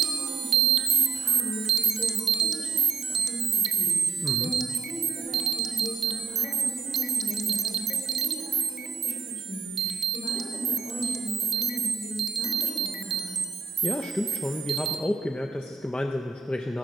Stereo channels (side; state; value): left; quieter; 4.8 dB